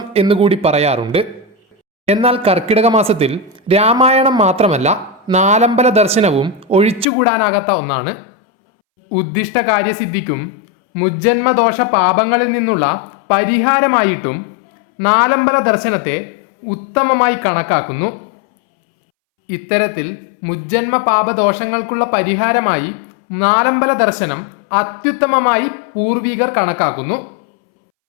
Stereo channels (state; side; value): drops out; right; at 7.1 s